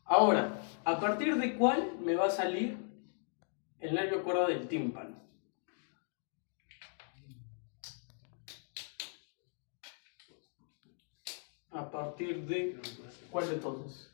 Ahora, ¿a partir de cuál me va a salir el nervio cuerda del tímpano? ¿A partir de cuál de todos?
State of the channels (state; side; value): silent; right; 53 dB below the other